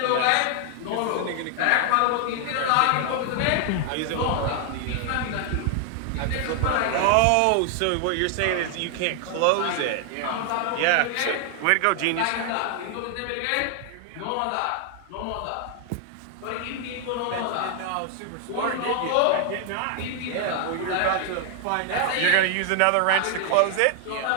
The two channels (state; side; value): different; both; correlation 0.00